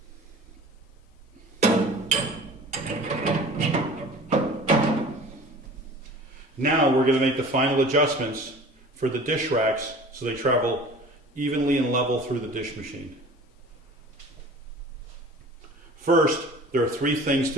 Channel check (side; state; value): both; normal; correlation 0.43